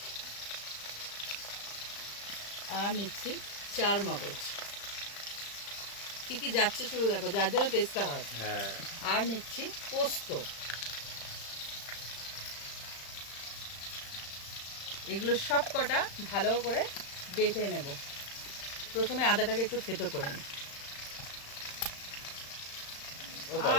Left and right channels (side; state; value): right; late; 35 ms